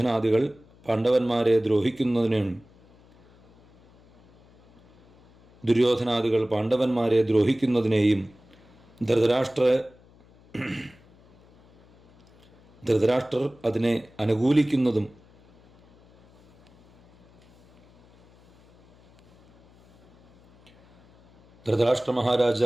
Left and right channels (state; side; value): noise; left; hum, 29 dB below the sound